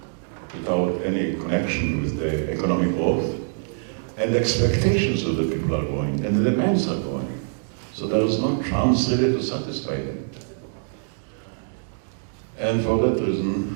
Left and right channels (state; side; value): silent; left; digital silence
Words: without any connection with the economic growth. And the expectations of the people are growing, and the demands are growing. So there is no chance really to satisfy them. And for that